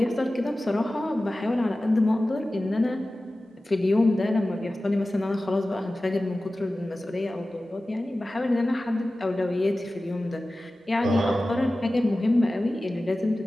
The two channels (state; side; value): normal; both; correlation 0.96